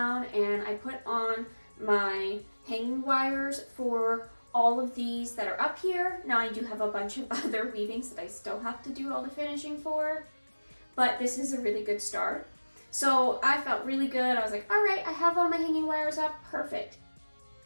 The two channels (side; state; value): both; inverted; correlation -1.00